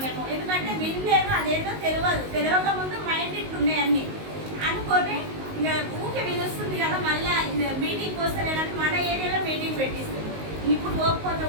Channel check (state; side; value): late; left; 19 ms